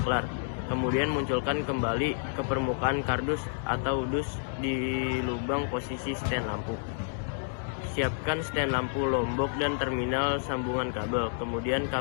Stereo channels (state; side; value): silent; right; digital silence